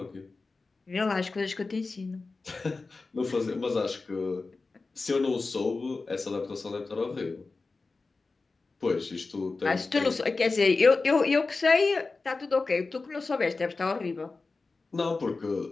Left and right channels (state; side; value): quieter; right; 3.8 dB